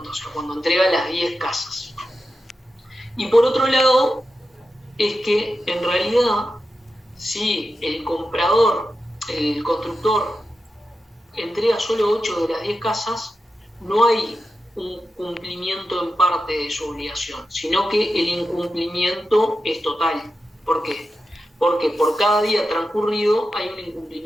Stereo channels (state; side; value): normal; both; correlation 0.90